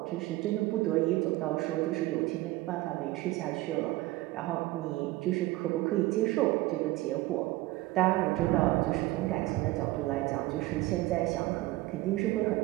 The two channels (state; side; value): quieter; left; 18.7 dB